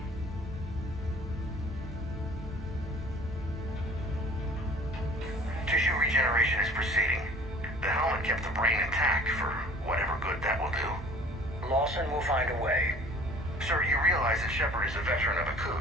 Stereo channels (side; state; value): both; normal; correlation 0.49